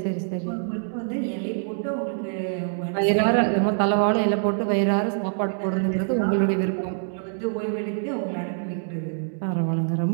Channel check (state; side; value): silent; left; digital silence